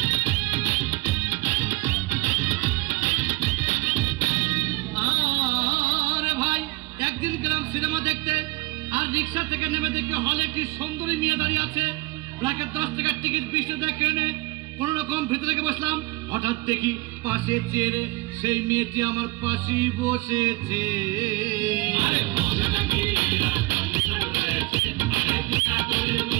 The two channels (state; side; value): quieter; left; 21.9 dB